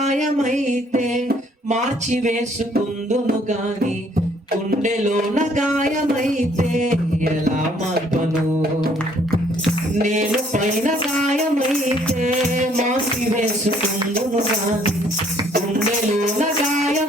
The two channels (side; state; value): both; normal; correlation 0.63